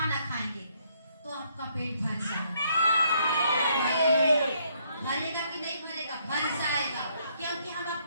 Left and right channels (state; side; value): inverted; both; correlation -0.71